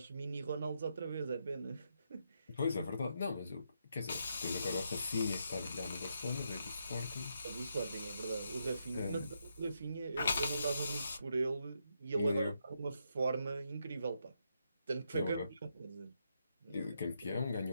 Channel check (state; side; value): inverted; both; correlation -0.80